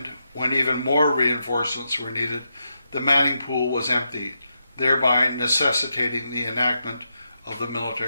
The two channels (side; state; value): both; inverted; correlation -0.84